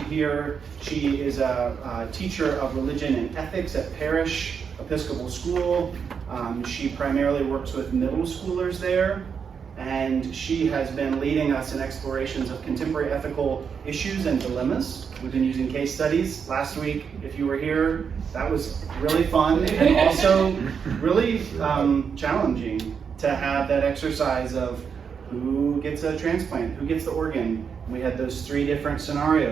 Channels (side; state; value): left; quieter; 6.6 dB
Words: here. She is a teacher of religion and ethics at Parish Episcopal School. She primarily works with middle schoolers there, and she has been leading us in explorations of contemporary ethical issues and dilemmas. We've been using case studies. Last week, if you were here, that was really fun and also really challenging to have that exercise of who gets a transplant, who gets the organ. We had those 3 different